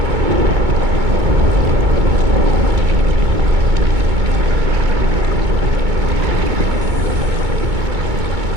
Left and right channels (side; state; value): left; late; 2.2 ms